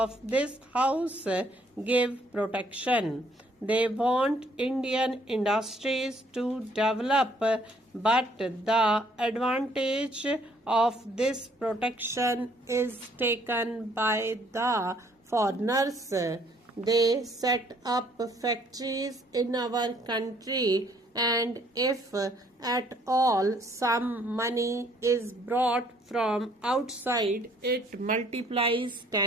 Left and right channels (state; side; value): normal; both; correlation 0.64